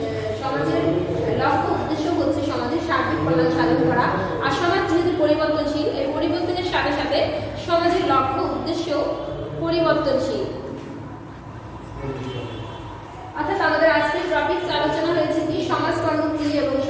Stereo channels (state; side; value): identical; both; correlation 1.00